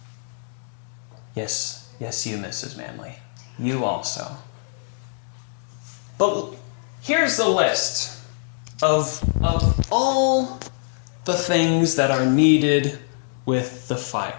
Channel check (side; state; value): right; silent; digital silence